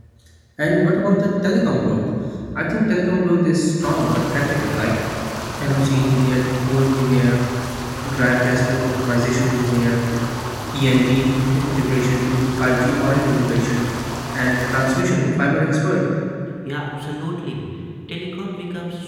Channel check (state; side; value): identical; both; correlation 1.00